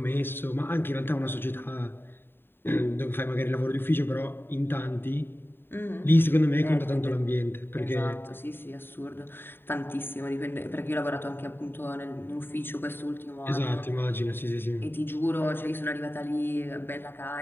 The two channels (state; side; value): late; right; 0.10 ms